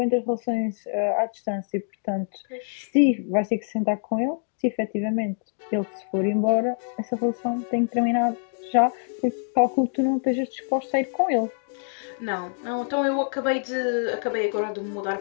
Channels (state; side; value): silent; right; digital silence